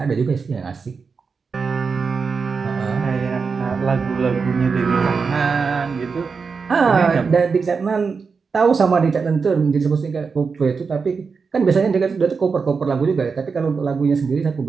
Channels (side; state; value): left; quieter; 5.2 dB